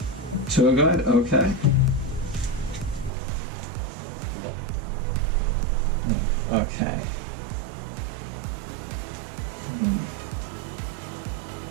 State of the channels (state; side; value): drops out; left; at 3.1 s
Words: Tour Guide, okay. Okay.